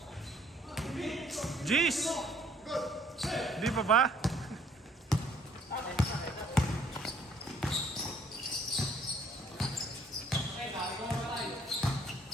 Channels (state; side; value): normal; both; correlation 0.62